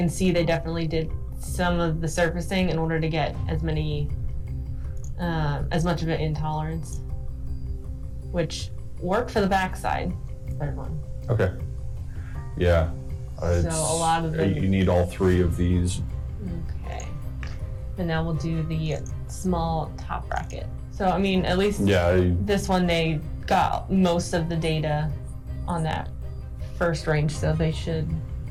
see they definitely did some of the surfacing in order to get as much of it in tolerance, which worked for the backside. Third one. Okay. Yeah. So a lot of them. You need all 3 of these. Okay. And now we'll do the small top bracket. So I mean, at least this one they got most of the data on that first range, so they should.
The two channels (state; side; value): identical; both; correlation 1.00